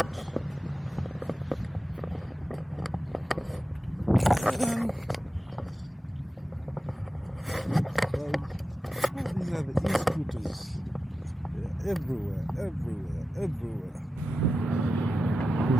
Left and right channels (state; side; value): normal; both; correlation 0.92